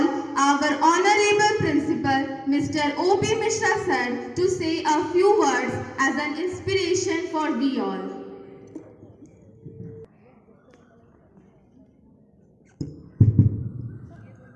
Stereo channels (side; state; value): both; identical; correlation 1.00